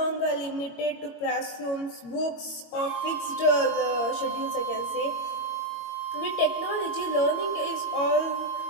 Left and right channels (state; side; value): late; right; 22 ms